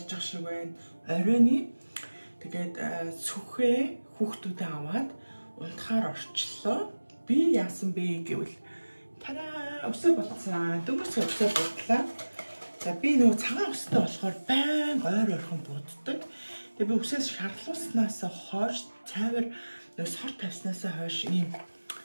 байгаа шиг байна. Оройны тэгээд сүхээ хүүхдүүдээ аваад унтахаар орчлоо. Би яасан бэ гэвэл тараа өсөө болцсон. Дөнгөж өсөө бодлаа. За би нөгөө цагаан өстэй болохоор байн ойр ойрхон буддаг. Тэгээ би өсөөс шарлууснаас хойш цайвар нөгөө сор тавьснаас хойш ийм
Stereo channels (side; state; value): both; inverted; correlation -1.00